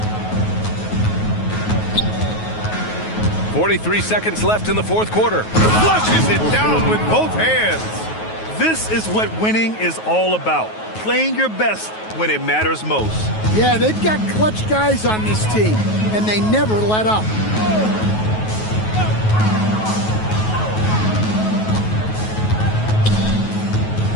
43 seconds left in the fourth quarter. Flushes it down with both hands. This is what winning is all about. Playing your best when it matters most. Yeah, they've got clutch guys on this team, and they never let up.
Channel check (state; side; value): late; right; 9.3 ms